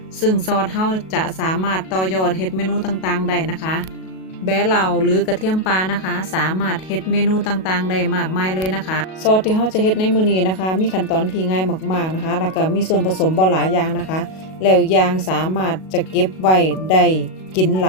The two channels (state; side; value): late; right; 37 ms